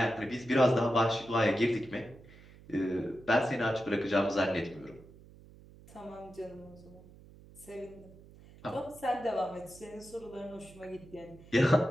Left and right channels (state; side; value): noise; right; hum, 21 dB below the sound